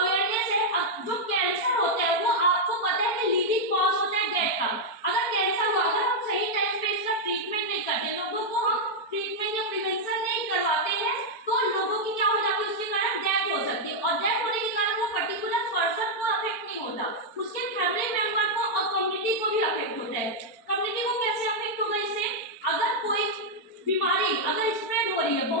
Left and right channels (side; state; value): right; late; 4.5 ms